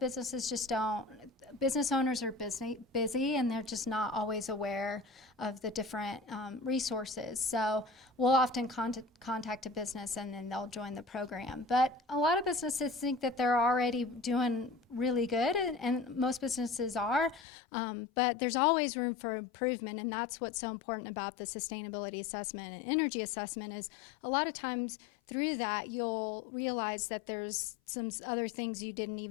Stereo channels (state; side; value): drops out; right; at 17.4 s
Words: just don't. Business owners are busy, and they're just not always aware of the different resources. So we'll often contact a business, and then they'll join the program. But a lot of businesses think that they're already doing really good, and most businesses are. But there's always room for improvement, and that's what's so important about the sustainability assessment and energy assessment is a lot of times through that you'll realize that there's some other things you didn't